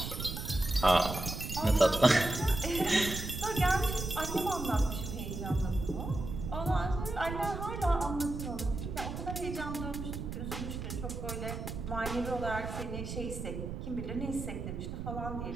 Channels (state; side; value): noise; right; rumble, 6 dB below the sound